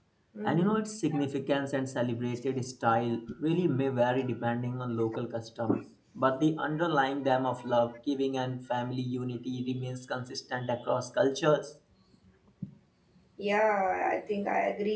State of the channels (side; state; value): both; identical; correlation 1.00